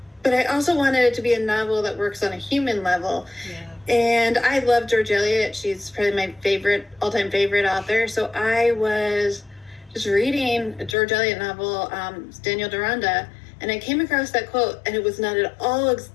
but I also wanted it to be a novel that works on a human level. Yeah. And I love George Eliot. She's probably my all-time favorite author. So I was just reading a George Eliot novel, Daniel Deronda, and I came across that quote, and it was not at all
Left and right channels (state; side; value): drops out; right; at 11.0 s